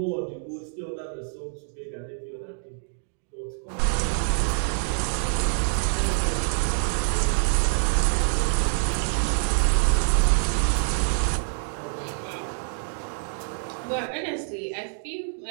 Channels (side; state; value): left; silent; digital silence